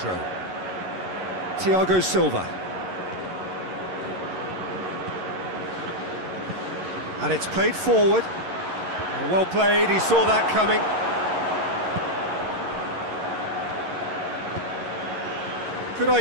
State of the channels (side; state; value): left; late; 11 ms